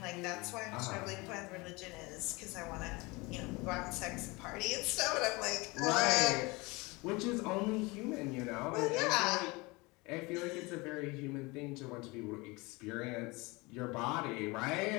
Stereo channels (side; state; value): right; quieter; 24.8 dB